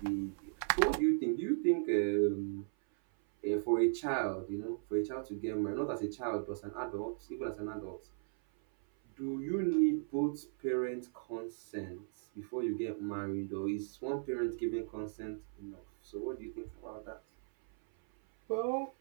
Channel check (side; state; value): left; silent; 53 dB below the other